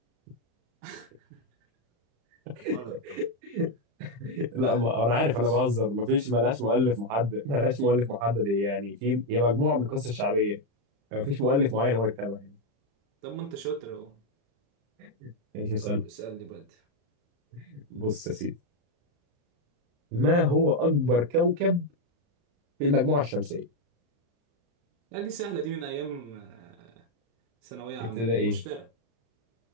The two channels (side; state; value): left; late; 35 ms